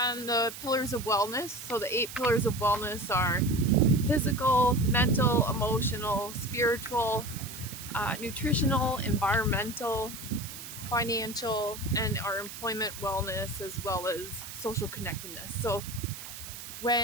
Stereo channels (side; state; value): right; noise; hiss, 11 dB below the sound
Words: the pillars of wellness. So the 8 pillars of wellness are physical, mental, emotional, spiritual, nutritional, environmental, financial, and our employment wellness, as well as social connectedness. So